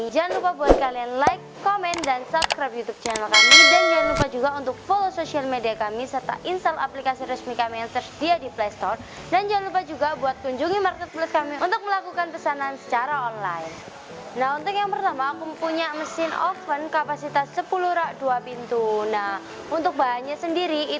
jangan lupa buat kalian like, komen, dan subscribe YouTube channel kami. Dan jangan lupa juga untuk follow sosial media kami serta install aplikasi resmi kami yang tersedia di Play Store. Dan jangan lupa juga buat kunjungi marketplace kami untuk melakukan pesanan secara online. Nah, untuk yang pertama aku punya mesin oven kapasitas 10 rak 2 pintu. Nah, untuk bahannya sendiri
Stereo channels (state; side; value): identical; both; correlation 1.00